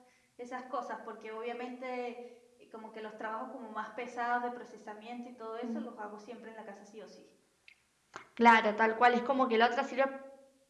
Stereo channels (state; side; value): identical; both; correlation 1.00